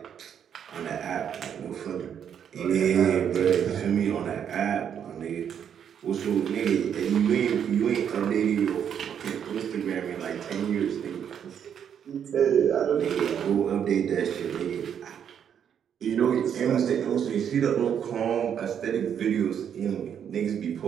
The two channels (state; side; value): quieter; left; 8.5 dB